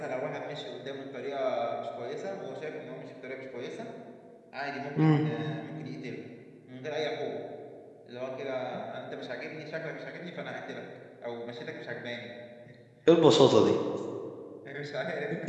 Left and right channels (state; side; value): identical; both; correlation 1.00